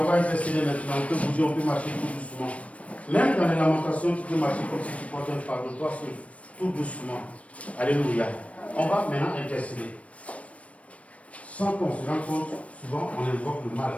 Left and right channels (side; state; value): right; late; 0.064 ms